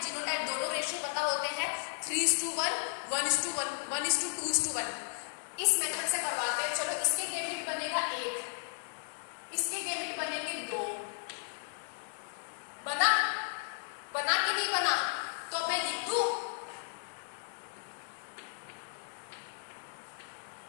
जीनोटाइप दोनों रेशियो पता होते हैं, 3:1, 1:1, 1:2:1। इस मेथड से करवाते हैं। चलो, इसके गैमेट बनेगा 1, इसके गैमेट बनेंगे 2। बना कि नहीं बना? तो मैं लिख दूं,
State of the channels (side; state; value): right; silent; digital silence